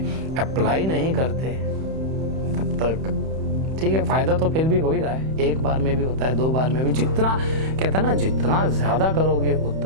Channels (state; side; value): late; left; 31 ms